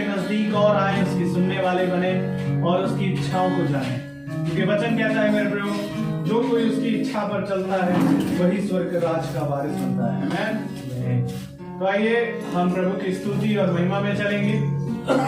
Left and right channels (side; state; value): both; identical; correlation 1.00